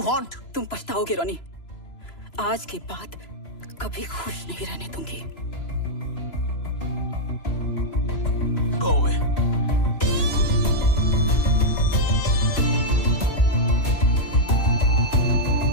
want? तुम पछताओगे रोनी। आज के बाद कभी खुश नहीं रहने दूंगी। Go away.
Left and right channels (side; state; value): right; late; 3.0 ms